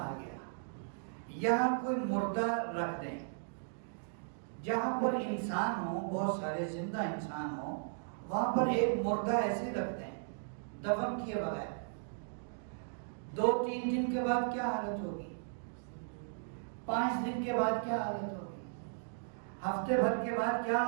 گیا. یہاں کوئی مردہ رکھ دیں, جہاں پر انسان ہو, بہت سارے زندہ انسان ہو, وہاں پر ایک مردہ ایسے رکھ دیں دفن کیے بغیر. 2-3 دن کے بعد کیا حالت ہوگی؟ 5 دن کے بعد کیا حالت ہوگی؟ ہفتے بھر کے بعد کیا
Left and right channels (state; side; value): silent; left; digital silence